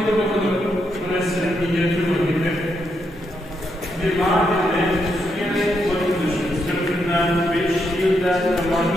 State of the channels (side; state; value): both; normal; correlation 0.80